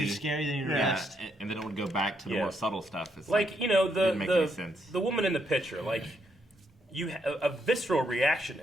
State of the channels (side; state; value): both; normal; correlation 0.76